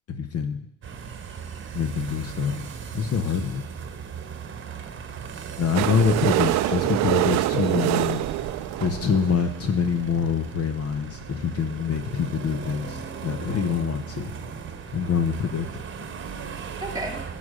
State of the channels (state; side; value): normal; both; correlation 0.30